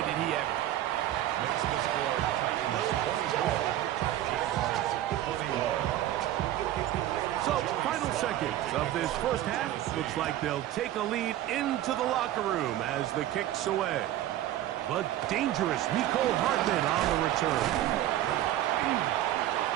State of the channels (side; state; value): left; quieter; 13.3 dB